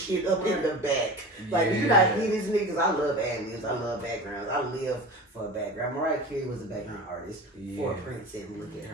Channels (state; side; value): normal; both; correlation 0.33